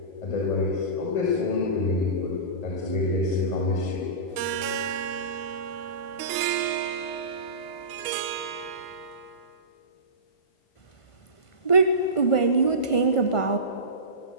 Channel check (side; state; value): right; late; 1.2 ms